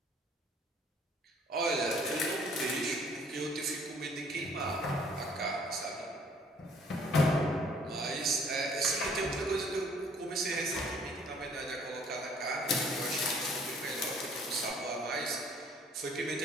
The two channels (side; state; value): both; normal; correlation 0.59